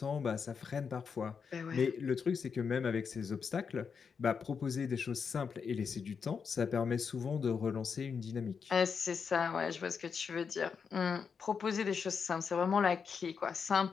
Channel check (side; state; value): right; quieter; 6.1 dB